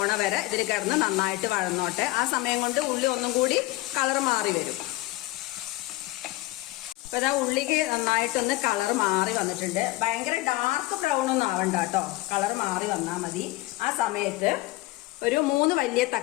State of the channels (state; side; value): quieter; right; 19.4 dB